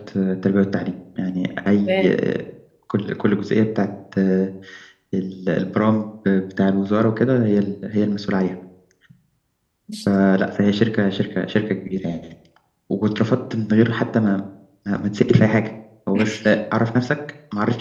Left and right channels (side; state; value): both; identical; correlation 1.00